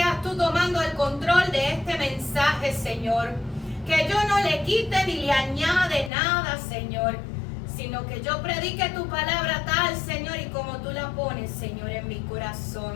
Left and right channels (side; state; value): right; drops out; at 6.1 s